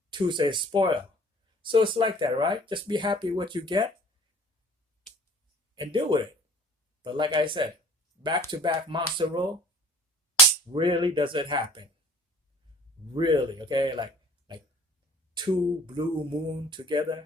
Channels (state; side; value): normal; both; correlation 0.50